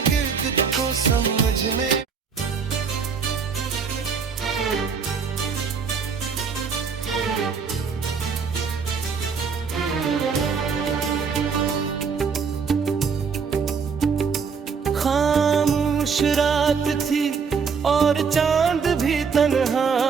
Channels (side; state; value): left; quieter; 5.8 dB